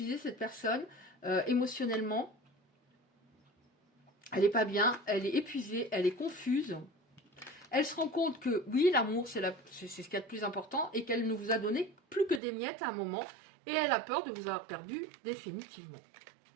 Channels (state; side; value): drops out; left; at 12.4 s